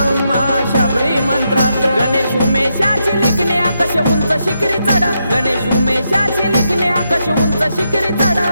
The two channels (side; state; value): both; inverted; correlation -0.82